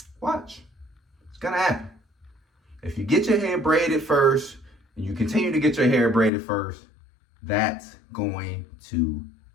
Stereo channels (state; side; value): drops out; right; at 6.3 s